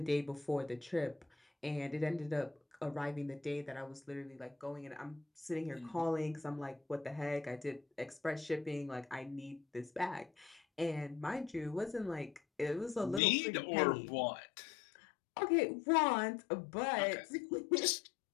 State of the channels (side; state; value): right; drops out; at 13.2 s